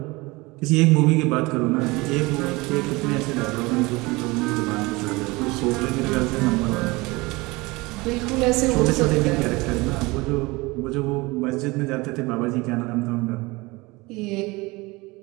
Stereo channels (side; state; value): left; quieter; 23.3 dB